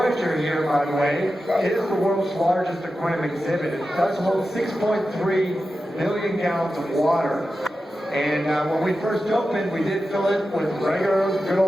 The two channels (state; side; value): normal; both; correlation 0.92